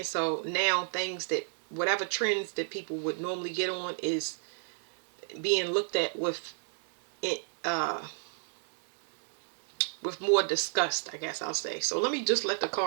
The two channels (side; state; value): left; silent; 56 dB below the other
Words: So now whatever trends that people would normally get on is being looked at uh with more disgust, I guess I'll say. So let me just let the